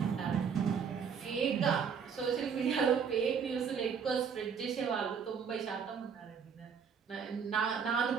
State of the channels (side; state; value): left; quieter; 6.7 dB